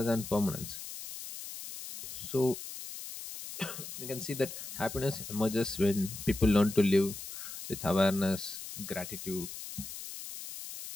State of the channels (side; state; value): left; noise; hiss, 10 dB below the sound